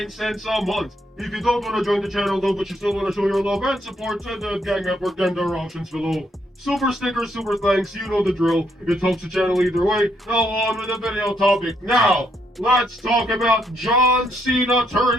cents a month. If you don't want to join the channel though, but you still want to show your love and support to the Gang Network, then there are options below. Super stickers, super thanks, you know the drill. It helps the channel either way. Now on with the video topic. Now, let's talk about John Cena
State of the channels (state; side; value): normal; both; correlation 0.75